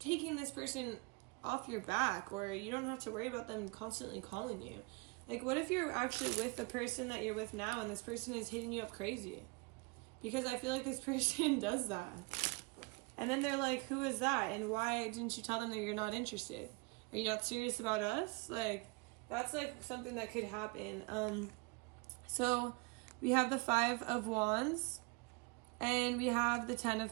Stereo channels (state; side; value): quieter; left; 28.0 dB